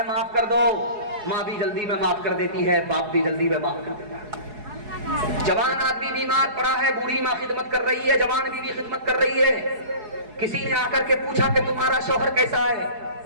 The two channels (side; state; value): left; late; 4.7 ms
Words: معاف کر دو. ماں بھی جلدی میں معاف کر دیتی ہے, باپ بھی جلدی میں معاف کر دیتا ہے. جوان آدمی بیمار پڑا ہے, بوڑھی ماں خدمت کر رہی ہے, جوان بیوی خدمت کر رہی ہے. کسی نے آ کر کے پوچھا کہ تمہارا شوہر کیسا ہے؟